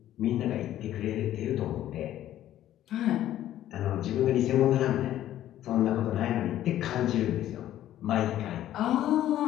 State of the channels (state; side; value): quieter; right; 12.6 dB